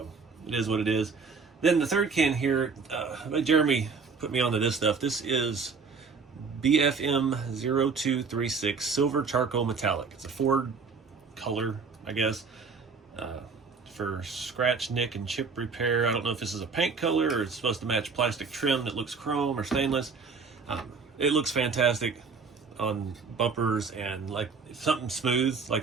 it is what it is. Then the third can here, Jeremy put me onto this stuff. This is BFM 0236 Silver Charcoal Metallic. It's a Ford color, I guess, for scratch, nick, and chip repair. I don't know if this is a paint color or it's supposed to match plastic trim that looks chrome or stainless. It looks fantastic on bumpers and like something smooth,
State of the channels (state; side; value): quieter; left; 5.0 dB